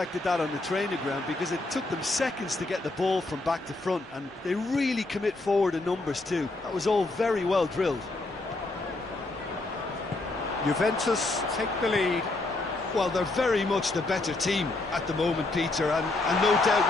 that on the training ground because it took them seconds to get the ball from back to front, and they really commit forward in numbers too. That was all very well drilled. Juventus take the lead. Well, they're very much the better team at the moment, Peter, and no doubt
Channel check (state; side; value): quieter; right; 3.0 dB